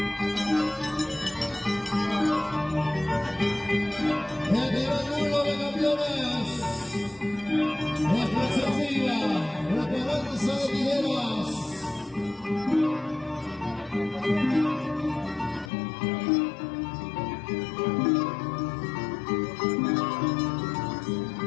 El primer mundo de campeones, la exclusiva, la esperanza de Figueras.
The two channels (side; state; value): right; drops out; at 15.7 s